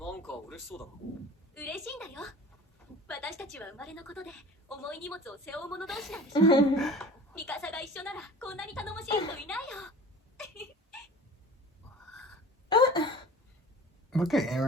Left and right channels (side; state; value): both; normal; correlation 0.42